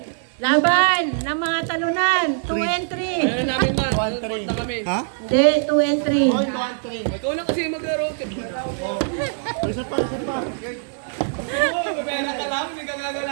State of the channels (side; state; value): left; silent; digital silence